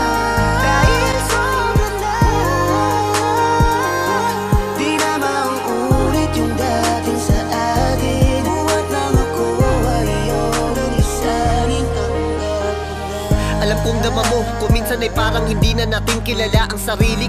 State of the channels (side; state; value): both; identical; correlation 1.00